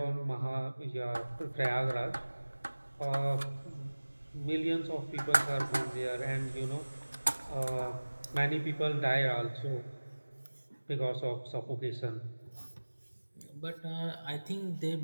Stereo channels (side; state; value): both; inverted; correlation -1.00